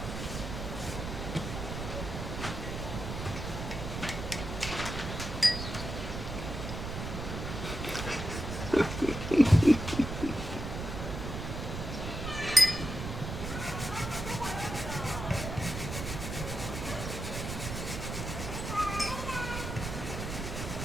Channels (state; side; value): noise; right; rumble, 5 dB below the sound